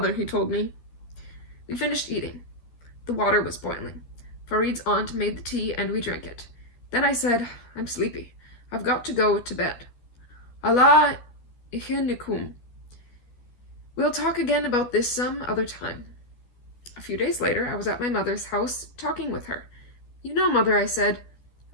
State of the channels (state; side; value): late; right; 13 ms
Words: he told me. We finished eating. The water was boiling. Farid's aunt made the tea and we drank it. Then I said, "I'm sleepy. I've got to go to bed. Allah ihinikum. We'll talk again about this some other time." A few days later, I was at my mother's house talking with her. "You know, Mother," I said,